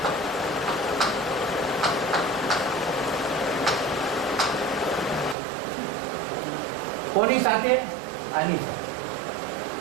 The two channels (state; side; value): drops out; left; at 5.4 s